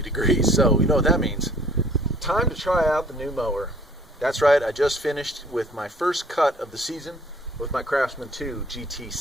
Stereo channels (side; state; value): both; normal; correlation 0.56